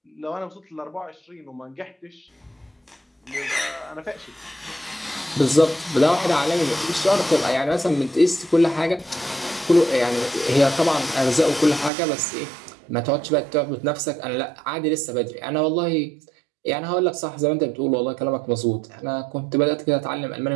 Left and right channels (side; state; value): left; drops out; at 11.9 s